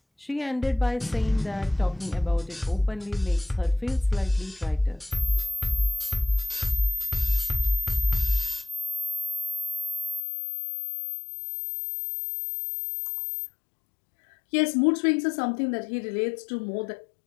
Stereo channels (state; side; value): drops out; right; at 10.2 s